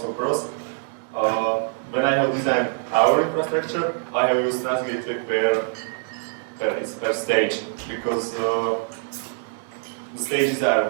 pros. When I have designed our infrastructure, I have used transit gateway per stage, because the stages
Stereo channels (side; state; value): left; silent; 63 dB below the other